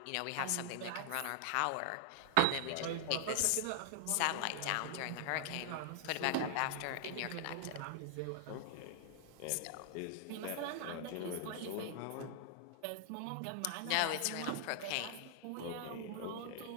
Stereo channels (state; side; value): different; both; correlation 0.00